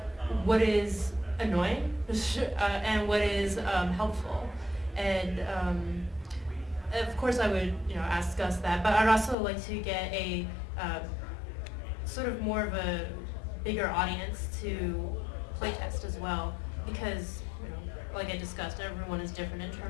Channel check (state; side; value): drops out; right; at 9.3 s